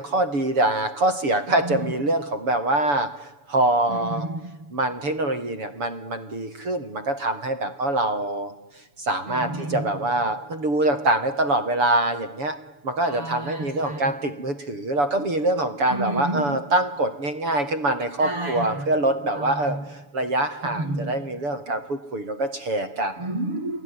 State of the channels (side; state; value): left; late; 7.0 ms